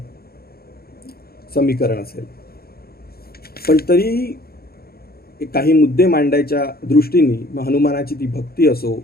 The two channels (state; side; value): late; right; 0.45 ms